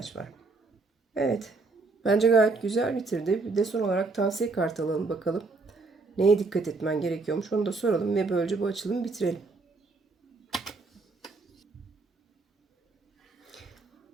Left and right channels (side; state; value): left; quieter; 3.8 dB